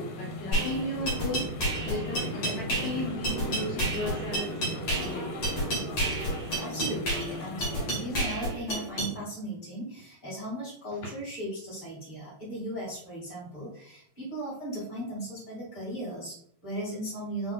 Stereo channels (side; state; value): right; late; 8.7 ms